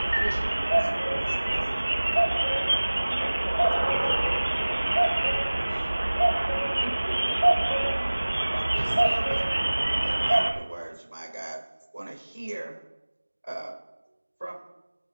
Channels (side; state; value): both; inverted; correlation -1.00